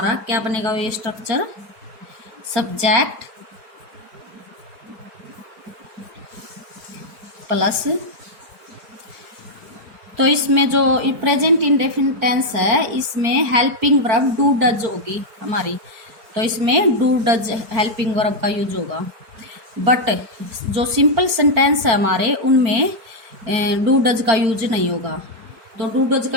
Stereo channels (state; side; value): late; left; 4.7 ms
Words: क्या बनेगा? ये स्ट्रक्चर सब्जेक्ट प्लस, तो इसमें जो प्रेजेंट इंडेफिनिट टेंस है इसमें हेल्पिंग वर्ब डू डज होगी हमारी। तो इसमें डू डज हेल्पिंग वर्ब का यूज होगा। बट जो सिंपल सेंटेंस है हमारे उनमें डू डज का यूज नहीं होगा। तो डू डज का